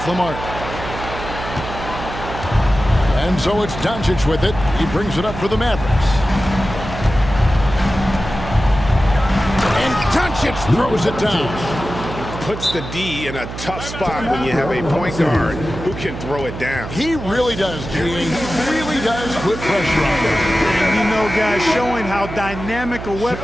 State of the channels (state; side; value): noise; right; hum, 9 dB below the sound